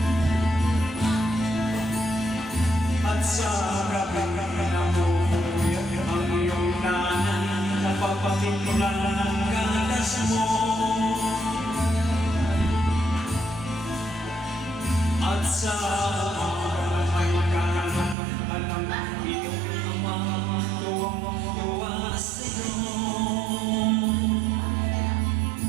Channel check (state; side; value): drops out; left; at 18.2 s